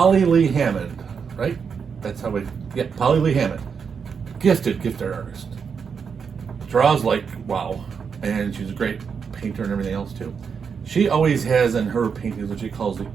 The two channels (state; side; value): quieter; left; 6.3 dB